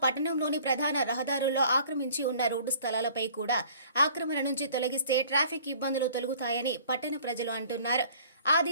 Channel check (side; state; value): both; inverted; correlation -0.52